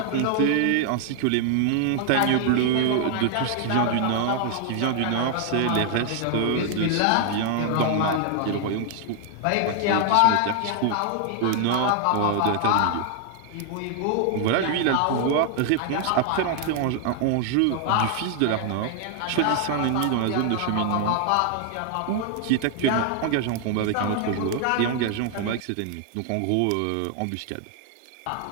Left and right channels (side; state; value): both; different; correlation 0.00